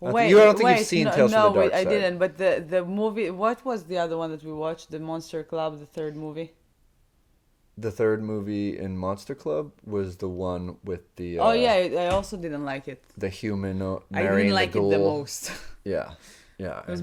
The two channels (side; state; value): both; identical; correlation 1.00